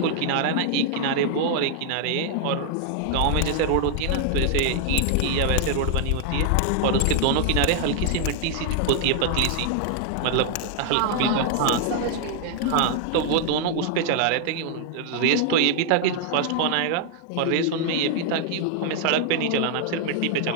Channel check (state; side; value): different; both; correlation 0.00